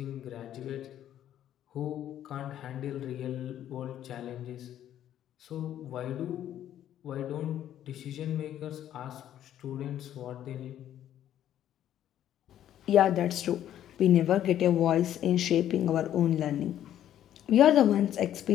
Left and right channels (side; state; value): right; quieter; 11.3 dB